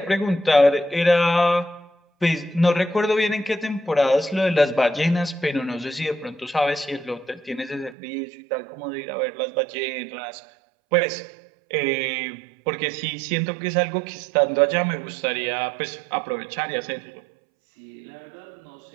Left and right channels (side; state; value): left; drops out; at 8.0 s